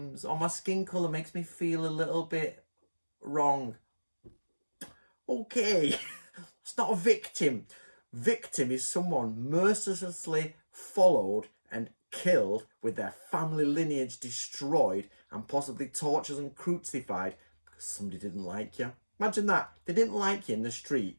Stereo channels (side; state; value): both; inverted; correlation -1.00